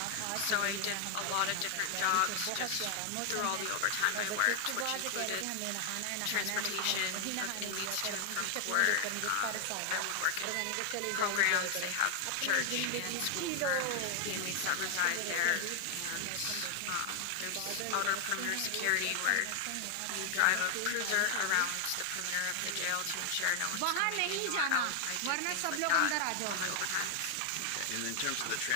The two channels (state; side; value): different; both; correlation 0.00